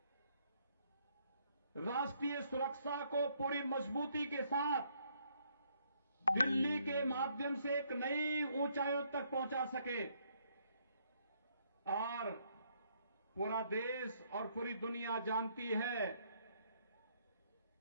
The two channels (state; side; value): inverted; both; correlation -0.69